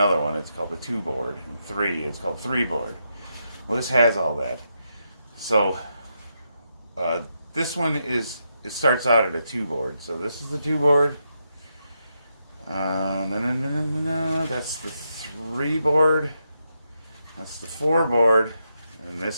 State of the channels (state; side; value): inverted; both; correlation -0.83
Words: one. It's called the 2 board. And 3, it's called 3 board. Well, this has all that. So this one it starts out at a 2 board. So this is the 2 board. That's the 3 board. That's the 4 board. And